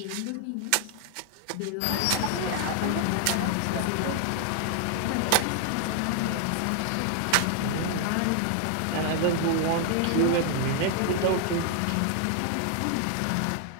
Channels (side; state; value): both; different; correlation 0.00